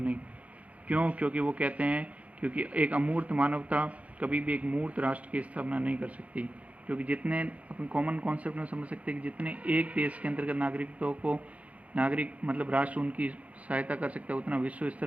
नहीं। क्यों, क्योंकि वो कहते हैं क्योंकि एक अमूर्त मानवता कभी भी एक मूर्त राष्ट्र की स्थापना नहीं कर सकती, क्योंकि जितने अपन कॉमन कॉन्सेप्ट में समझ सकते हैं कि जितने एक देश के अंतर्गत नागरिकों को मतलब राष्ट्र उनकी सहायता कर सकता है, उतना विश्व स्तर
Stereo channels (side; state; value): left; late; 0.066 ms